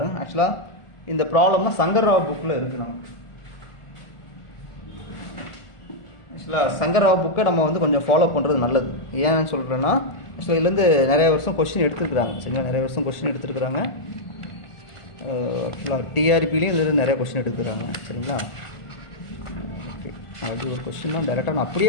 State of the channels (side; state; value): right; late; 1.4 ms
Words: ஆக்சுவலாக இந்த ப்ராப்ளம்னா சங்கர்ராவ் புக்கில் இருக்குது. நமக்கு ஆக்சுவலாக சங்கர்ராவ் புக்கை நம்ம வந்து கொஞ்சம் ஃபாலோ பண்ணுறது நல்லது. ஏன்னு சொல்கிறேன்னா, ஆக்சுவலாக இதுலேருந்து நிறைய வருஷம் கொஸ்டின் எடுத்துருக்குறாங்க. சரிங்களா? நிறைய வருஷம் கொஸ்டின் எடுத்துருக்குறாங்க. ஆக்சுவலாக டிஆர்பிலையும் இதில் நிறைய கொஸ்டின் எடுத்துக்கிறாங்க. சரிங்களா? ஓகே, அது ஒரு கொஸ்டின்லாம் டேரெக்டாக நான்